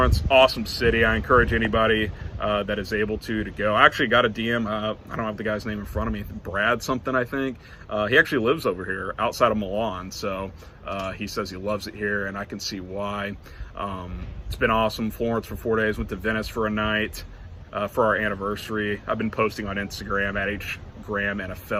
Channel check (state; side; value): identical; both; correlation 1.00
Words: Awesome city. I encourage anybody that is able to go. I actually got a DM. I don't have the guy's name in front of me. Brad something, I think. He actually lives over here outside of Milan. So he says he loves it here, and I can see why. It's been awesome. Florence for 4 days. Went to Venice for a night for our anniversary. I've been posting on Instagram at Graham